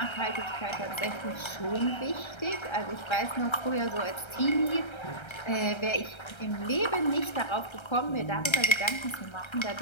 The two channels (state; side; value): late; right; 1.3 ms